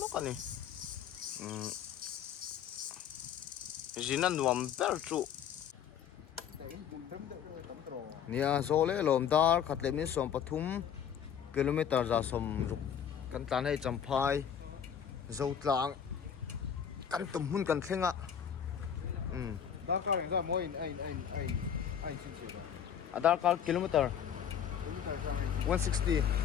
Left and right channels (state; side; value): quieter; right; 8.5 dB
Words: lo kan ni jinan nuam ber chu nia zole lom dar khatle min som pathum kilometer za som ruk kan tan hai champhai zo tlang kan tum hun kan thlenga Dar car ra mo in ai chin chi da. Aadhaar card kilometer 160